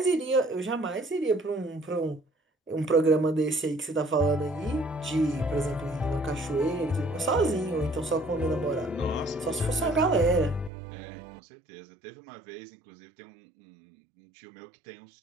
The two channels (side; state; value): left; drops out; at 10.7 s